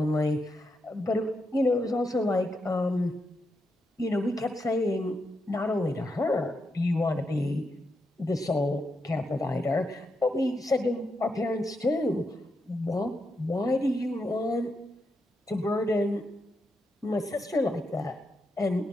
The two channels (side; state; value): both; normal; correlation 0.84